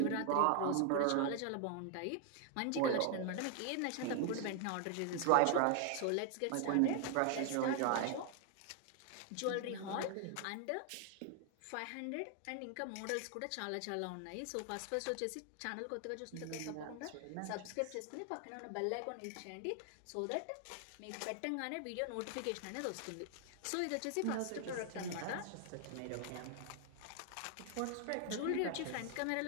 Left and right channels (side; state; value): both; different; correlation 0.00